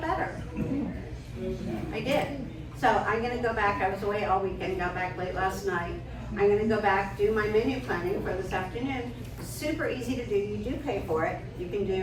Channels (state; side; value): identical; both; correlation 1.00